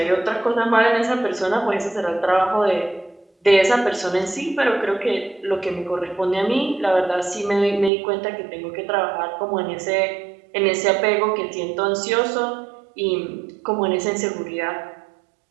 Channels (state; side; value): drops out; left; at 7.9 s